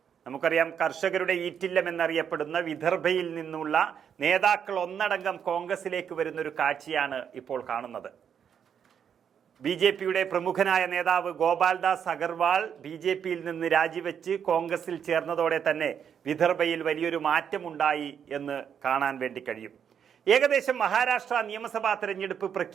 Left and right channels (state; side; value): quieter; left; 8.0 dB